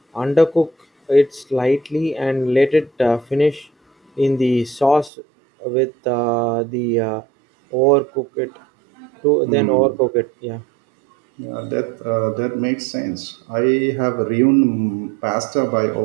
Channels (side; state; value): left; drops out; at 5.1 s